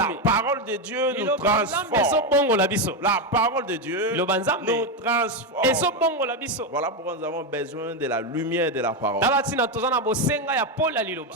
parole de Dieu nous transforme. La parole de Dieu nous transforme. Voilà pourquoi nous avons besoin de la lumière de la parole.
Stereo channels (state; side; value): normal; both; correlation 0.09